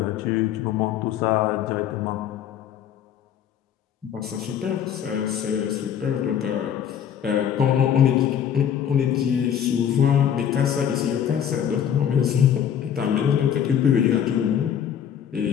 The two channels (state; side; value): quieter; right; 9.1 dB